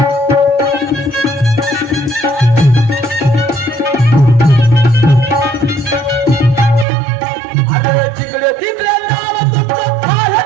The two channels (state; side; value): drops out; left; at 6.9 s